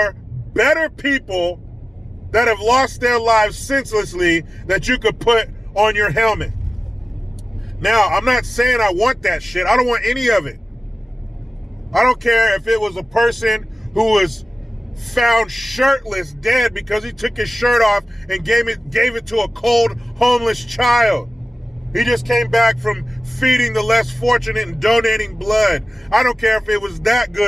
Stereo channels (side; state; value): both; normal; correlation 0.96